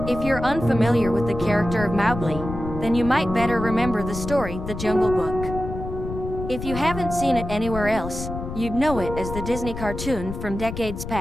If you're unfamiliar with the character of Mowgli, then you might better remember the story, The Jungle Book. If you haven't seen it anywhere else, you'd know it as the Disney cartoon from decades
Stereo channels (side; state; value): left; noise; rumble, 8 dB below the sound